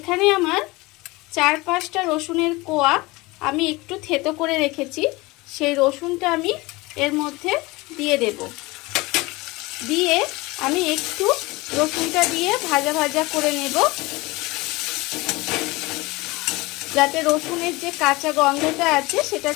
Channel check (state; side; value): quieter; right; 22.4 dB